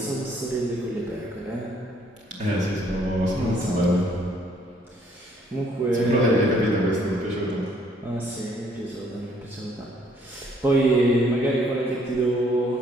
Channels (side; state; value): both; normal; correlation 0.64